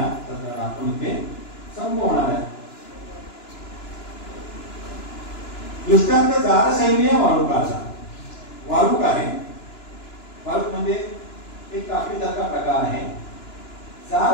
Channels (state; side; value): late; right; 2.9 ms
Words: सत्रात आपण इथे संपवणार आहे. दृष्टांत जारसैन्य वाळुकाचा. वाळूक आहे. वाळूक म्हणजे एक कापडीसारखा प्रकार आहे.